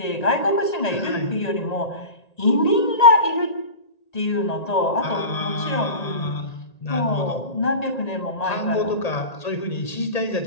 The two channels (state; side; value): late; right; 1.9 ms